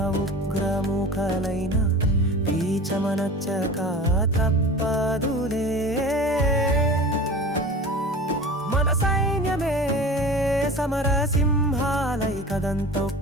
ఉగ్రముఖలైన పీచమనచ్చక తప్పదులే. మన సైన్యమే సమర సింహాలై కదం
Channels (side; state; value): both; normal; correlation 0.36